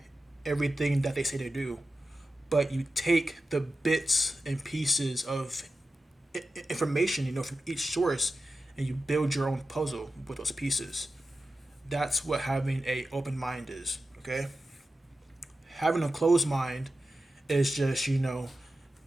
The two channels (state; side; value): normal; both; correlation 0.92